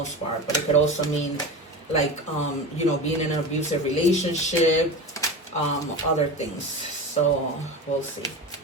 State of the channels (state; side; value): normal; both; correlation 0.28